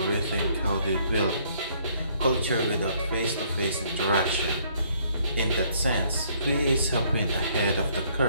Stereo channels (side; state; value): both; inverted; correlation -0.64